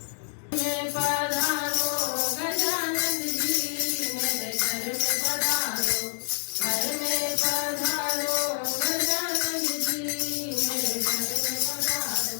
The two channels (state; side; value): silent; right; digital silence